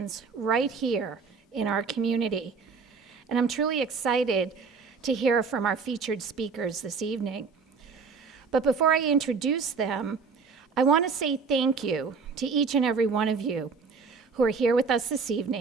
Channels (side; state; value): left; quieter; 5.2 dB